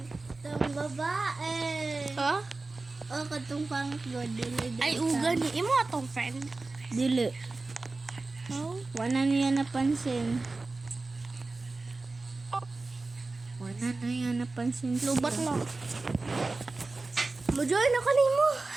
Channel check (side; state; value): left; quieter; 3.5 dB